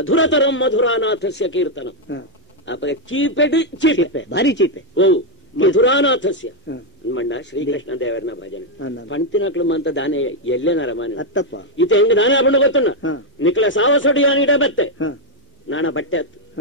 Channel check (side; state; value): both; normal; correlation 0.01